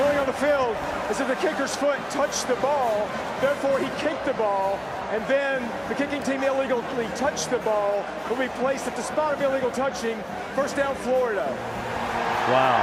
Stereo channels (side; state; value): both; identical; correlation 1.00